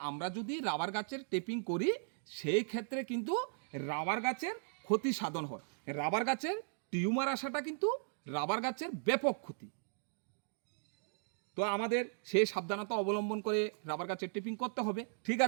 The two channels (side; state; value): left; silent; digital silence